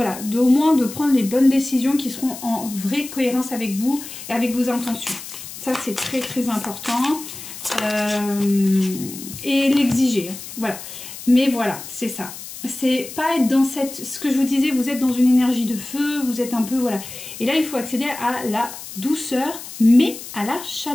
au moins de prendre les bonnes décisions qui seront en vraie cohérence avec vous et avec vos intentions. Ça c'est très très important. Et l'exiger, voilà. Mais voilà, c'est ça. C'est pas être dans cette, ce que je vous disais, vous êtes dans une énergie de feu, vous êtes un peu, voilà. Et là, il faut accéder à la douceur, mais à la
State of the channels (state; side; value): noise; left; hiss, 12 dB below the sound